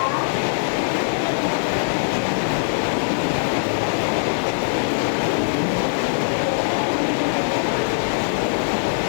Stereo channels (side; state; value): right; silent; 65 dB below the other